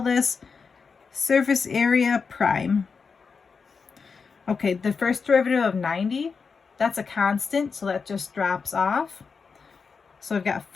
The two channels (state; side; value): quieter; right; 5.3 dB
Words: this surface area prime. Okay, the first derivative of 90, that's a constant, so that just drops off. So I've got